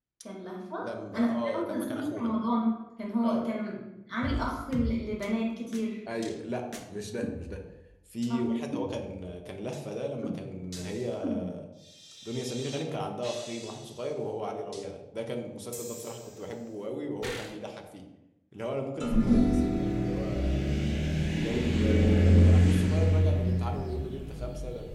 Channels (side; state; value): both; identical; correlation 1.00